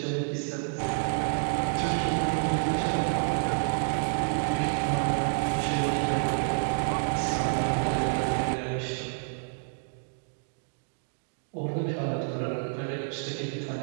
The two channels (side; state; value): left; silent; digital silence